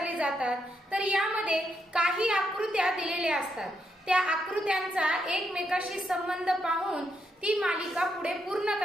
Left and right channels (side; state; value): both; normal; correlation 0.80